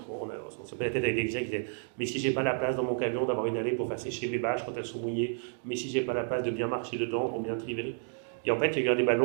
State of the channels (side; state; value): left; silent; digital silence